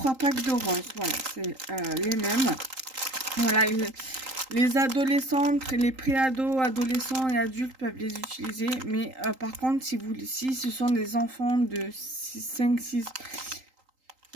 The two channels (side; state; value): left; late; 3.8 ms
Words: packs de rose. Voilà, c'est les mêmes. Voilà, les adolescentes, les préados, adolescents et adultes peuvent les utiliser. Mais par contre, si ce sont des enfants de 5, 6,